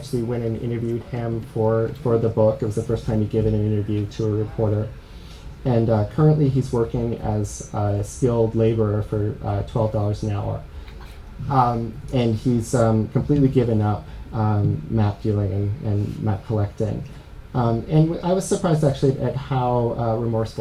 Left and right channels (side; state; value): both; identical; correlation 1.00